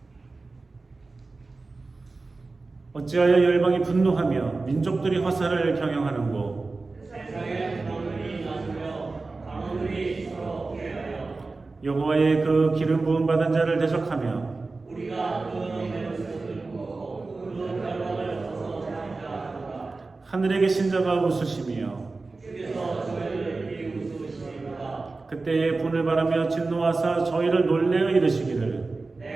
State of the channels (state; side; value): quieter; left; 3.7 dB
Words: 어찌하여 열방이 분노하며 민족들이 화살을 경영하는고 세상에 강원들이 나서며 강원들이 서로 피하여 여호와의 그 기름 부음 받은 자를 대적하며 우리가 그 너희를 들고 그 결박을 서서 장자하노라. 하늘에 계신 자가 웃으시며 주께서 저희를 비웃으시리로다. 그때에 분을 바라며 진노하사 저희를 놀래어 이르시기를